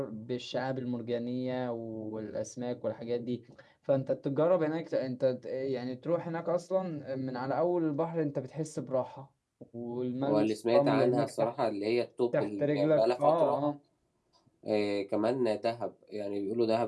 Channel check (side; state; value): both; identical; correlation 1.00